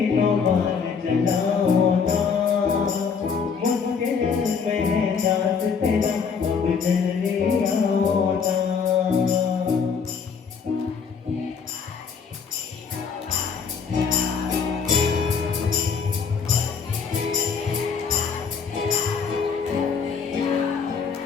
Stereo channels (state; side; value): quieter; right; 5.9 dB